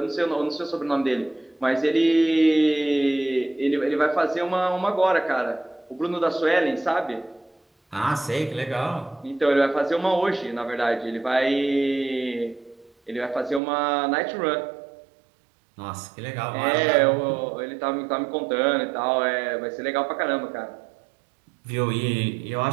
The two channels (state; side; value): drops out; left; at 13.6 s